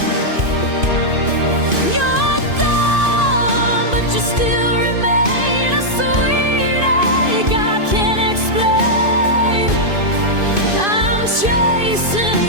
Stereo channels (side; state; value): left; late; 2.5 ms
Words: You're gone, but you still remain a sweet ache I can't explain. I'm chasing